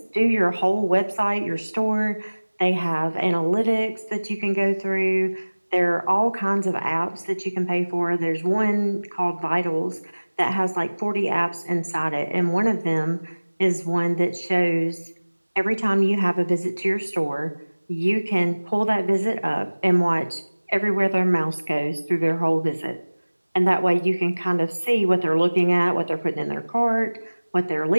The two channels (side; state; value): both; inverted; correlation -1.00